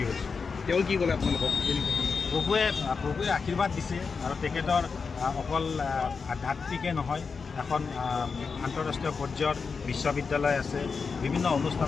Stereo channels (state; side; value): quieter; right; 5.1 dB